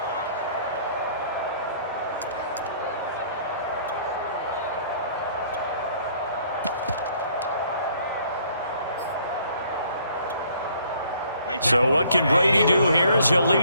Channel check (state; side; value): inverted; both; correlation -0.61